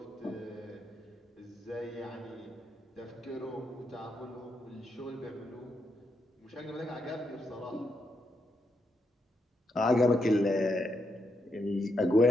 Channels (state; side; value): normal; both; correlation 0.81